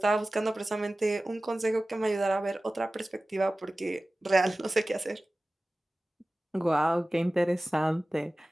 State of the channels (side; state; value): both; normal; correlation 0.97